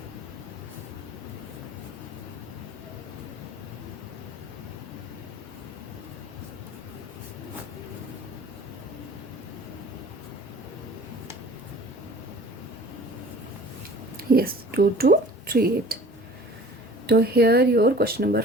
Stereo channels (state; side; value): normal; both; correlation 0.46